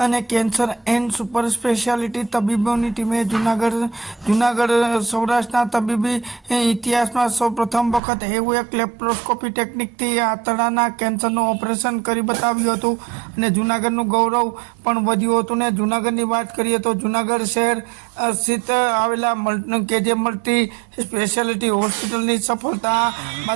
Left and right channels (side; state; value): left; drops out; at 8.0 s